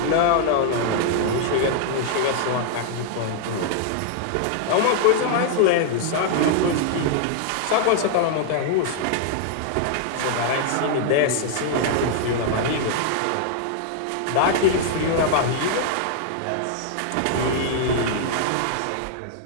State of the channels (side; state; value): both; different; correlation -0.01